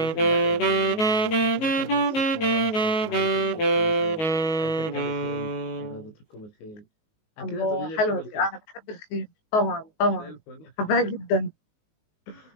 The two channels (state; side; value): late; right; 19 ms